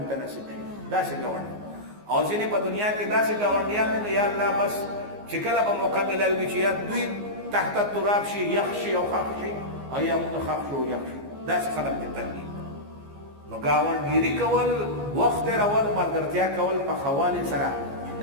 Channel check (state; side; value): late; left; 14 ms